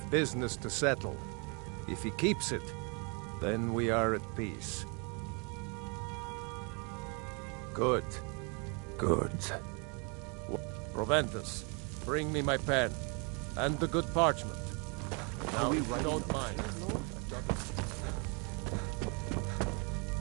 business to settle. If he keeps it, then we are at peace. Good. Good. Proventus, bring me my pen. And the good parchment. Now, if you don't mind.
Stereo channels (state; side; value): quieter; left; 34.0 dB